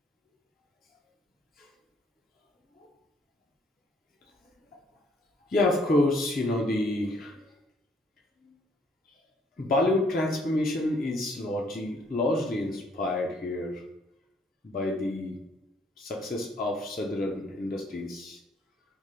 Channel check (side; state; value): both; normal; correlation 0.65